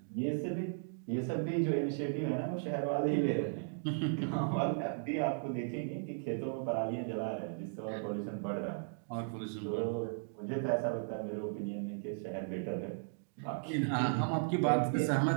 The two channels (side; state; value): left; silent; digital silence